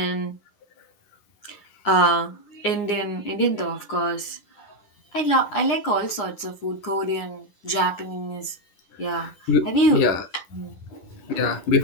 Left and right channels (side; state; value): right; late; 9.8 ms